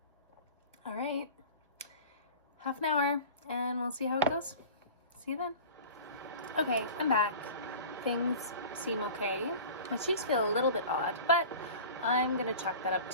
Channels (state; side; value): inverted; both; correlation -0.39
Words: All right. Half an hour, and we'll see how it goes. See you then. Okay, I'm back. Things seem okay. My cheeks feel a little bit odd, but I'm gonna chalk that up